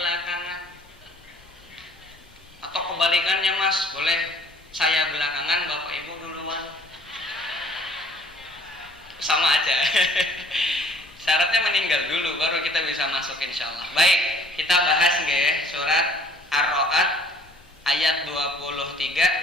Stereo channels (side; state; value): both; normal; correlation 0.56